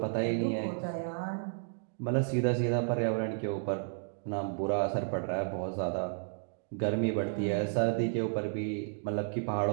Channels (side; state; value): left; silent; digital silence